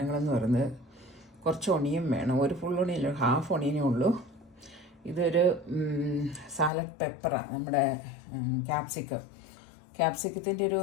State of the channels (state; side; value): drops out; right; at 6.7 s